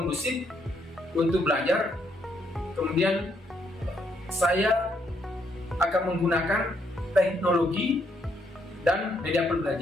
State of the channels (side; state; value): both; normal; correlation 0.74